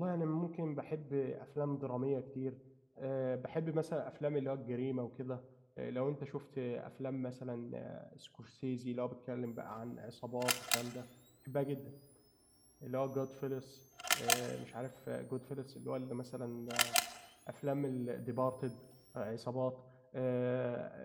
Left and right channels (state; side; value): identical; both; correlation 1.00